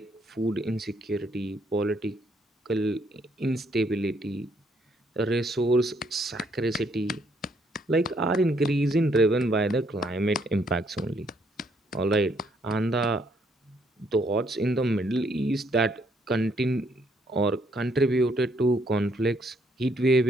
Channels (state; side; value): normal; both; correlation 0.70